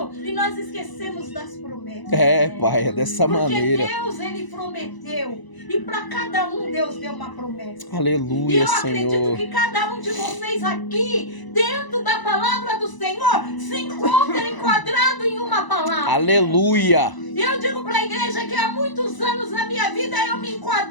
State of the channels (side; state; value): right; late; 1.0 ms